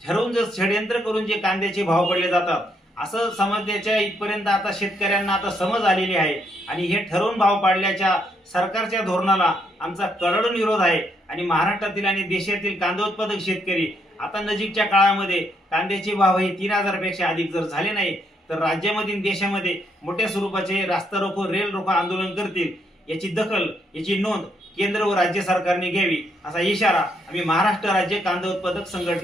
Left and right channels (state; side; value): normal; both; correlation 0.74